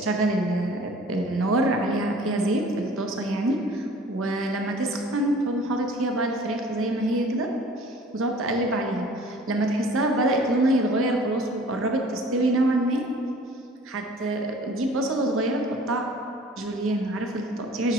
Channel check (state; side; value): normal; both; correlation 0.49